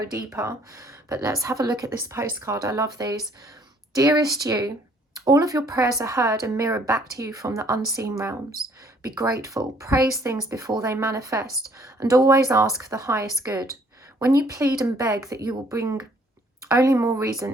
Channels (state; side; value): normal; both; correlation 0.62